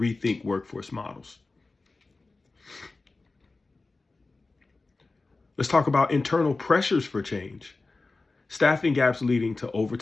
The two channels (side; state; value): right; quieter; 3.5 dB